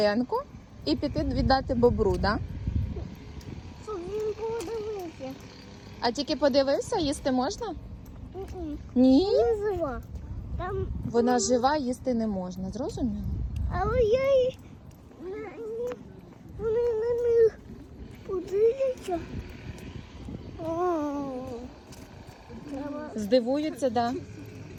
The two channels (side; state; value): both; identical; correlation 1.00